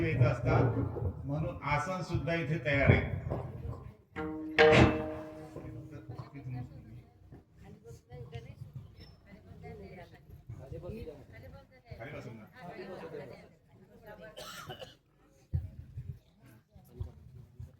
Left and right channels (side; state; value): both; identical; correlation 1.00